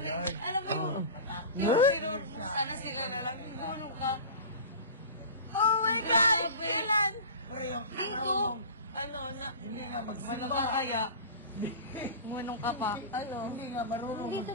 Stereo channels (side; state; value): both; inverted; correlation -0.33